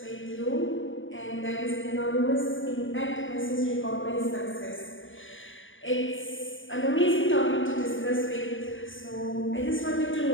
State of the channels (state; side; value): late; right; 0.57 ms